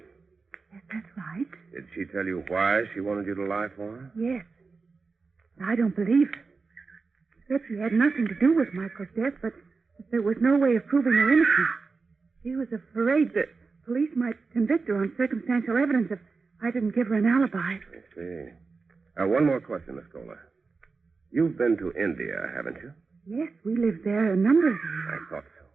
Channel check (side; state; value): left; quieter; 4.4 dB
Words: Yes, that's right. Did she tell you why she wanted you to lie for her? Yes. I don't believe her. She said she had nothing to do with Michael's death, but there was no way of proving her innocence. She was afraid that police might convict her on circumstantial evidence if I didn't give her an alibi. I see. One more question, Miss Kohler. You've been to India, haven't you? Yes, we lived there a number of years. I thought so.